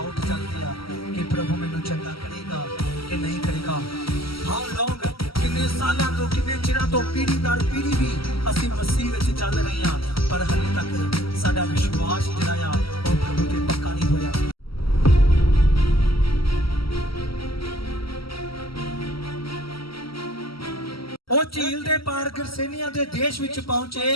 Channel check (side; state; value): right; late; 0.75 ms